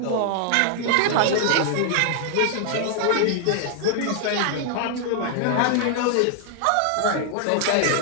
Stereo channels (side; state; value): both; different; correlation 0.00